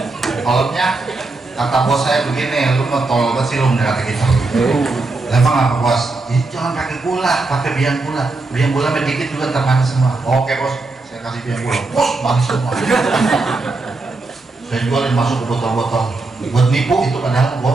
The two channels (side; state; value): left; quieter; 3.4 dB